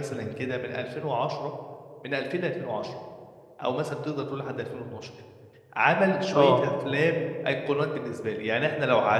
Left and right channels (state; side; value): identical; both; correlation 1.00